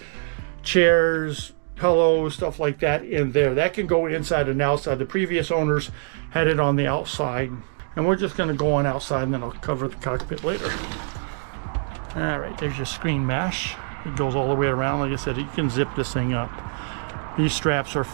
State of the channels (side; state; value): left; silent; digital silence